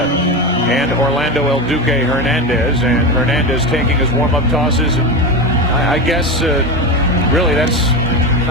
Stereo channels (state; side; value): normal; both; correlation 0.18